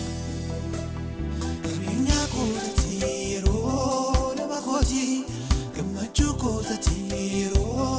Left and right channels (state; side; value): identical; both; correlation 1.00